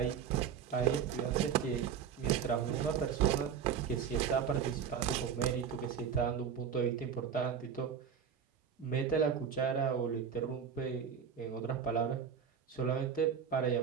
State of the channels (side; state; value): left; quieter; 7.5 dB